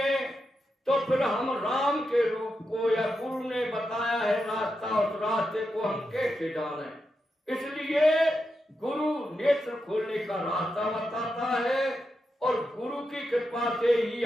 तो फिर हम राम के रूप को या गुरु ने बताया है रास्ता, उस रास्ते को हम कैसे जाने। इसलिए गुरु नेत्र खोलने का रास्ता बताता है और गुरु की कृपा से ही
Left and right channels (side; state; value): both; normal; correlation 0.87